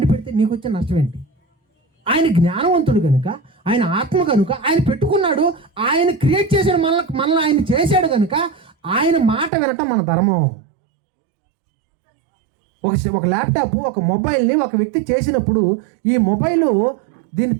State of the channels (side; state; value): left; drops out; at 9.5 s